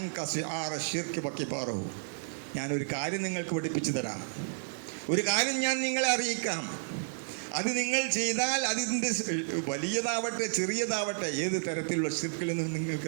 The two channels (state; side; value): silent; left; digital silence